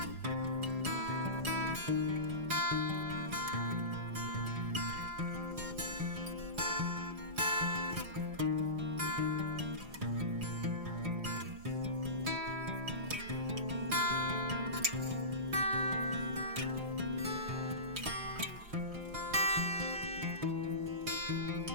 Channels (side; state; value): left; late; 4.8 ms